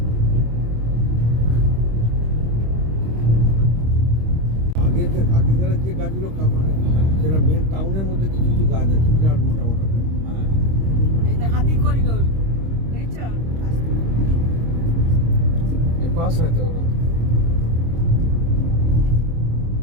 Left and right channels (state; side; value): late; left; 26 ms